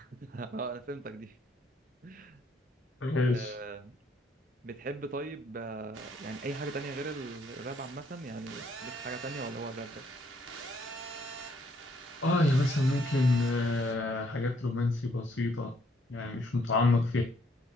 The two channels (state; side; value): normal; both; correlation 0.68